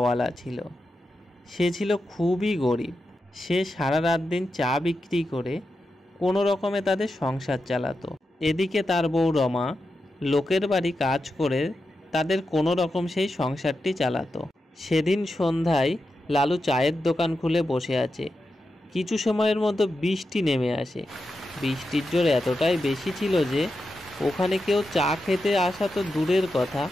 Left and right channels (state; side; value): normal; both; correlation 0.89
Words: ছিল। সে ছিল খুবই গরিব। সে সারা রাত দিন চা বিক্রি করে কোনো রকমে তাদের সংসার চালাতো। এদিকে তার বউ রমা লোকের বাড়ি কাজ করে তাদের কোনো রকম সেই সংসারটি চালাতো। সেদিন সন্ধ্যায় লালু চায়ের দোকান খুলে বসে আছে। কিছু সময়ের মধ্যে বৃষ্টি নেমে আসে। বৃষ্টির জোর এতটাই বেশি ছিল যে ওখানে কেউ চা খেতে আসা তো দূরের কথা,